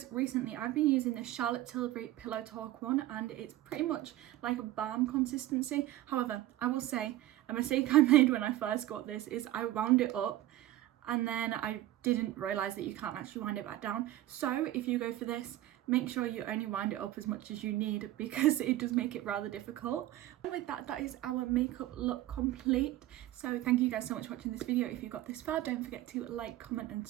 recently I've been using the Charlotte Tilbury Pillow Talk one, and it's pretty much like a balm consistency. However, I will say a mistake I made when I first got this is I wound it up and then I didn't realise that you can't actually wind it back down. So if you go for this, make sure you only wind it up as much as you need, because it does make it rather difficult. And with that, that is our makeup look complete. So thank you guys so much for watching this video. If you got this far, don't forget to like, comment and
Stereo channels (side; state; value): left; quieter; 15.1 dB